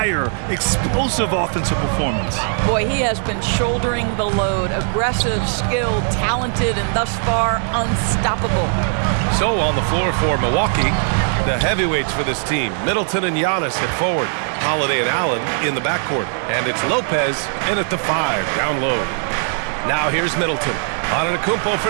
Explosive offensive performance. Boy, he has been shouldering the load. Aggressive, skilled, talented, and thus far unstoppable. So on the floor for Milwaukee, the heavyweights for this team, Middleton and Giannis at forward, Holiday and Allen in the backcourt, and it's Lopez in at the 5 down low. Now here's Middleton. Antetokounmpo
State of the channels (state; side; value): silent; left; 57 dB below the other